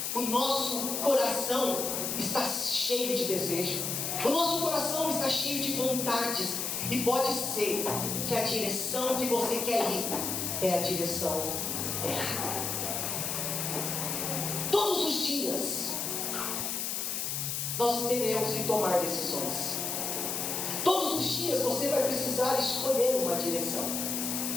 o nosso coração está cheio de desejo, o nosso coração está cheio de vontades, e pode ser que a direção que você quer ir é a direção errada. Todos os dias nós teremos que tomar decisões. Todos os dias você vai precisar escolher uma direção.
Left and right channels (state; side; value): noise; left; hiss, 1 dB below the sound